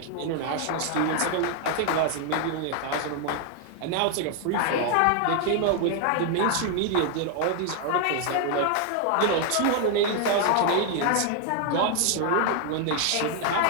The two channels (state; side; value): different; both; correlation 0.00